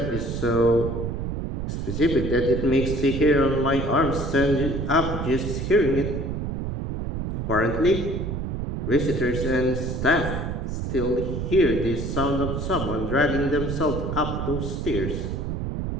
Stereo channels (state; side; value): noise; right; rumble, 3 dB below the sound